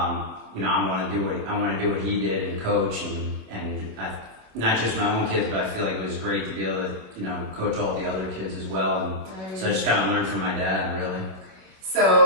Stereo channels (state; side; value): late; left; 27 ms